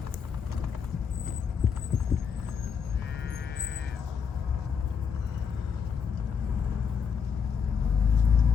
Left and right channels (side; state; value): right; quieter; 6.5 dB